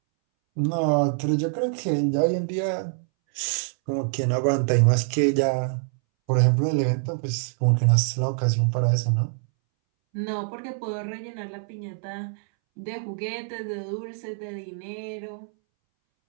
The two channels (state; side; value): silent; left; 62 dB below the other